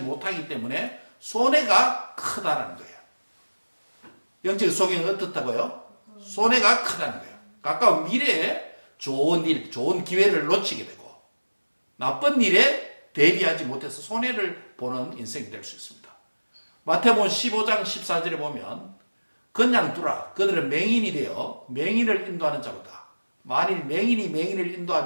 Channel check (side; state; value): both; inverted; correlation -1.00